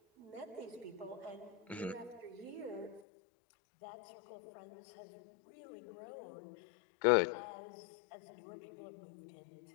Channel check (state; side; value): drops out; right; at 3.0 s